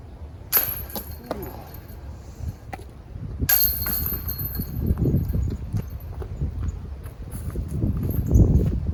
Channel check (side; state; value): both; identical; correlation 1.00